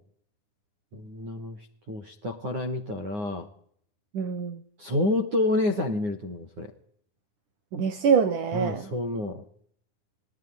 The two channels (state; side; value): late; left; 9.7 ms